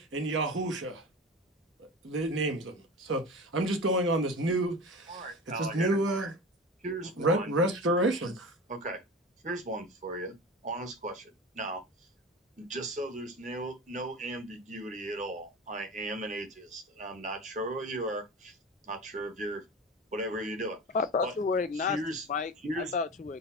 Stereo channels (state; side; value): normal; both; correlation 0.31